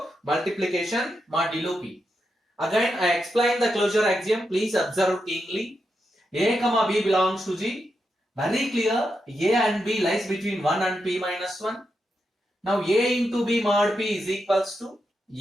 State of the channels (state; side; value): normal; both; correlation 0.85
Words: multiplication modulo P. Again, I explain the closure axiom. Please observe keenly. A comma B belongs to G. Very clear. A and B lies between 1 and P minus 1. Now A into B mod P is equals to